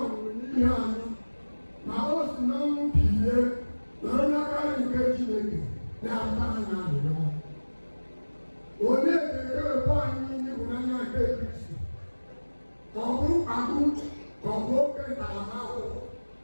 n'ihe anyị, ma o si na ọnwụ bilie nọrọ n'aka nke Chineke na-ata anyị arịrịọ. Onye ga-ewepụ anyị n'ịhụnanya nke Kristi? Ka ọ bụ mkpagbu, ka ọ bụ oke ntaramahụhụ,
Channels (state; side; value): inverted; both; correlation -1.00